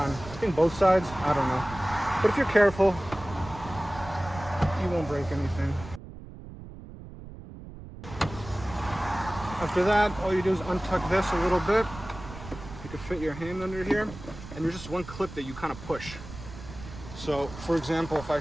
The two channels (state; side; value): noise; right; rumble, 14 dB below the sound